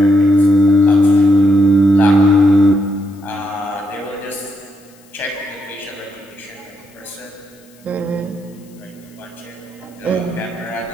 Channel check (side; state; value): left; noise; hiss, 30 dB below the sound